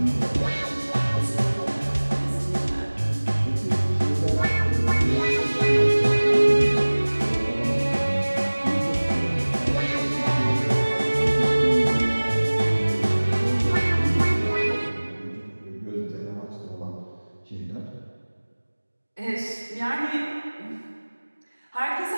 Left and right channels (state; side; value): inverted; both; correlation -1.00